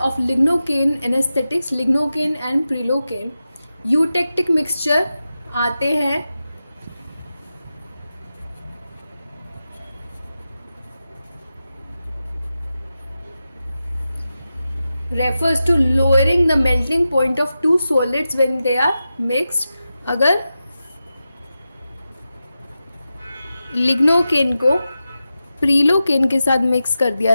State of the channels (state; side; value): inverted; both; correlation -0.92